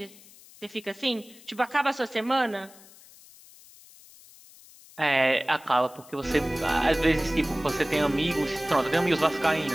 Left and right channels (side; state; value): left; noise; hiss, 23 dB below the sound